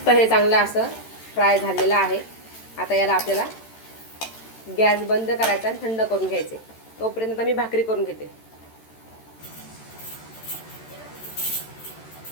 हे चांगलं असं फ्राय झालेलं आहे. आता याला आपल्याला गॅस बंद करायचा आणि थंड करून घ्यायचे. तोपर्यंत मी भाकरी करून घेते.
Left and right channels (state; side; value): late; right; 13 ms